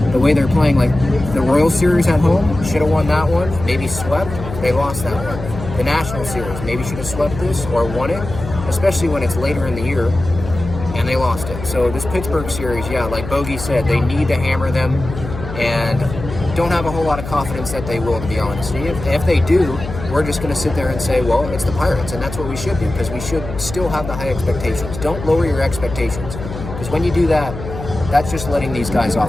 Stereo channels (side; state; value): left; noise; hum, 10 dB below the sound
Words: The way they're playing, like, the Royals series at home, should have won that one, maybe swept, they lost that one. The National series, maybe should have swept this or won it, especially when it's later in the year, and they lost it. So this Pittsburgh series, yeah, like Bogey said, they need to hammer them, and don't have a whole lot of confidence that they will, to be honest. If they do, we're just going to sit there and say, well, it's the Pirates, and that's what we should do, because we should still have the high expectations. Don't lower your expectations, because when you do that, that's just letting these guys off